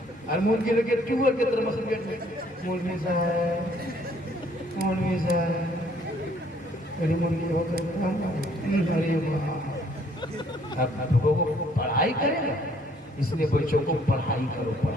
और मुर्गी लगे ट्यूबर के तरह मसल गेट में, मुर्गी साहब अरे मुर्गी हो गई। अरे वाह, अब लोगों को पढ़ाई करेगा, इसलिए बच्चों को पढ़ाई करो,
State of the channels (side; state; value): both; normal; correlation 0.63